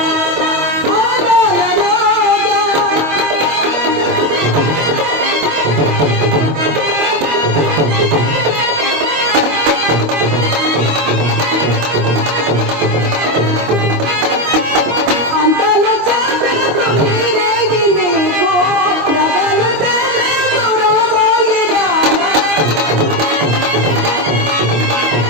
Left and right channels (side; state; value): left; late; 25 ms